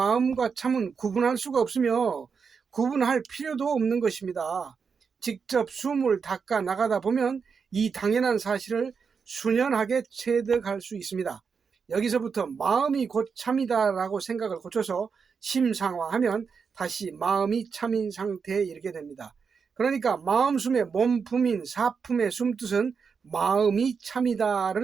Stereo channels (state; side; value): quieter; left; 5.8 dB